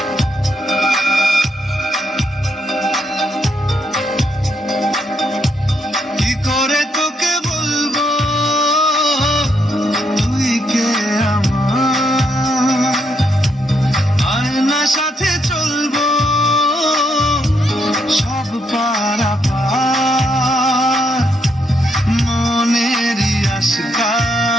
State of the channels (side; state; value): both; normal; correlation 0.76